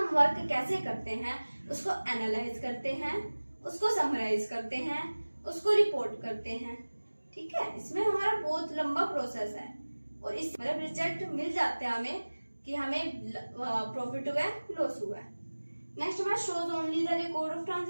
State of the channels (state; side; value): inverted; both; correlation -1.00